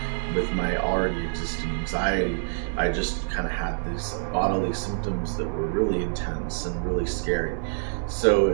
with my already existing anxiety, I just kind of had these bodily symptoms that were really intense and really scary. So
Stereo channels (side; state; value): left; silent; 61 dB below the other